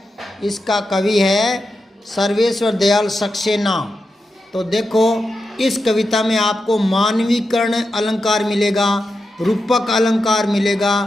इसका कवि है सर्वेश्वर दयाल सक्सेना। तो देखो, इस कविता में आपको मानवीकरण अलंकार मिलेगा, रूपक अलंकार मिलेगा,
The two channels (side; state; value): both; normal; correlation 0.88